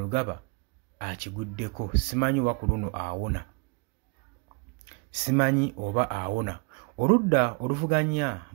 akiguddeko. Simanyi oba ku luno awona. Simanyi oba awona. Oludda oluvuganya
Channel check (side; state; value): left; quieter; 31.8 dB